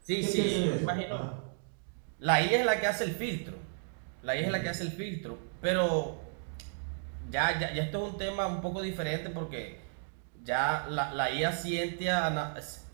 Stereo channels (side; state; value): left; silent; digital silence